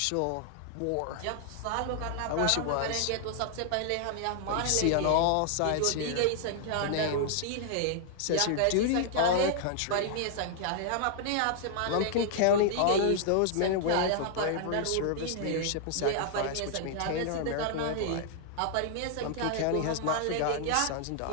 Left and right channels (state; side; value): different; both; correlation -0.01